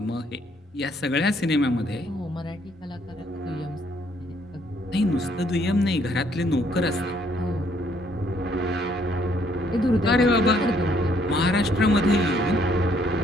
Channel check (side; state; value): both; normal; correlation 0.67